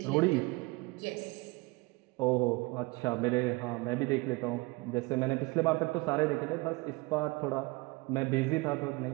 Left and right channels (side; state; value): left; quieter; 24.7 dB